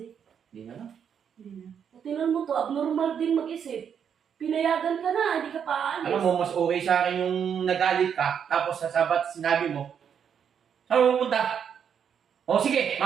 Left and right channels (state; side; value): quieter; left; 7.8 dB